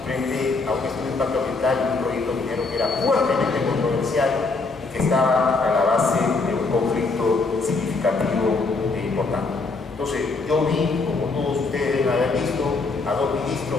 frente a un estudio de impacto ambiental y un proyecto minero que era fuertemente controversial y que estaba a la base de un conflicto significativo e importante. Entonces, yo vi, como todos ustedes deben haber visto, a 2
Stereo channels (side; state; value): right; quieter; 3.8 dB